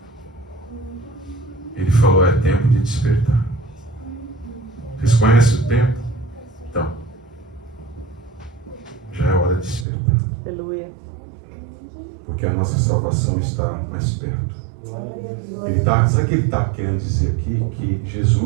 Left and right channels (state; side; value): drops out; left; at 9.9 s